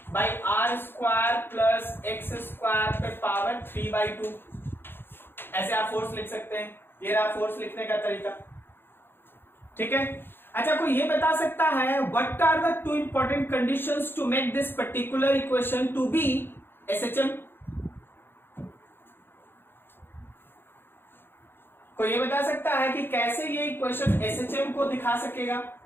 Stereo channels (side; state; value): right; late; 0.10 ms